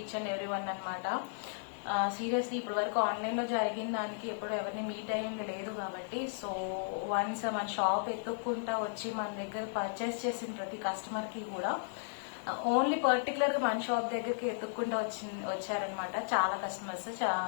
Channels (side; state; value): right; silent; 55 dB below the other